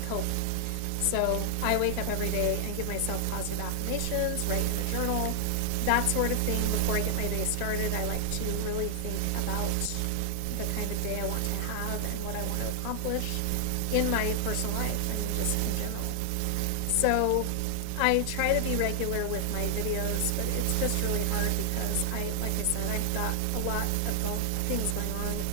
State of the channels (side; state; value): both; different; correlation 0.00